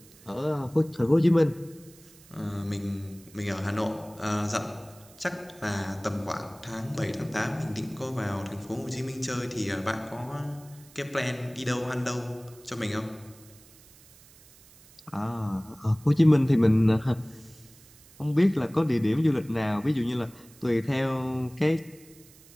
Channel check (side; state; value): right; noise; hiss, 24 dB below the sound